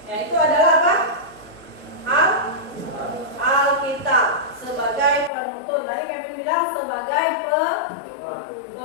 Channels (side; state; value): right; drops out; at 5.3 s